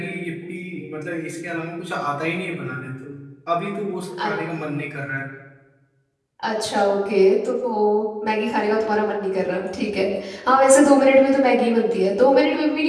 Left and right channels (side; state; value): both; identical; correlation 1.00